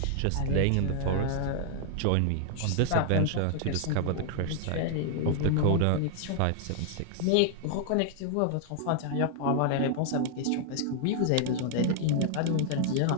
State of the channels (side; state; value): both; different; correlation 0.00